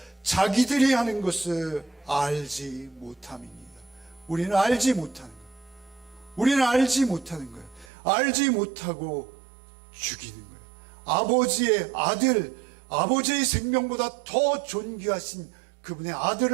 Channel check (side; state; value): left; drops out; at 7.9 s